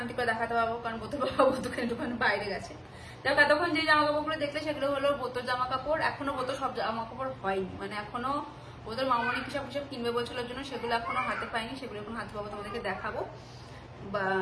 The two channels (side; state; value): both; identical; correlation 1.00